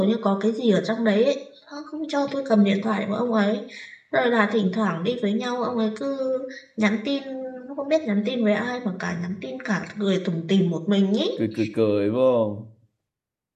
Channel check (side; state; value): both; identical; correlation 1.00